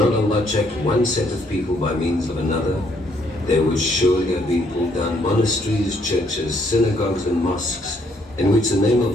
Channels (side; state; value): both; normal; correlation 0.69